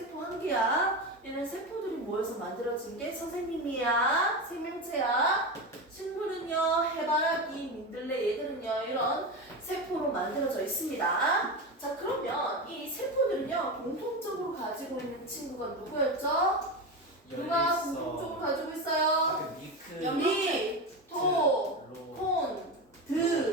한 개야. 얘는 세포들이 모여서 만들어진 게 선생님이야. 생명체야. 식물은요 해바라기, 민들레 얘들은요 이런 세포로 만들어져 있습니다. 자 그러면 이 세포들은요 공통적으로 가지고 있는 친구가 누구였죠? 누가 공통적으로 가지고 있어요? 미크. 미, 토, 콘,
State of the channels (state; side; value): normal; both; correlation 0.20